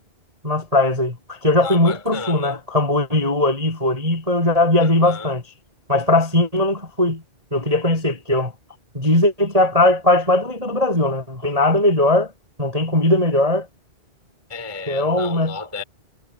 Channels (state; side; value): late; left; 1.8 ms